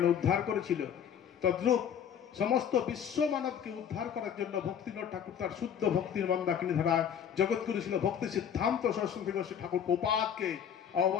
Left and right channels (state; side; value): quieter; right; 8.5 dB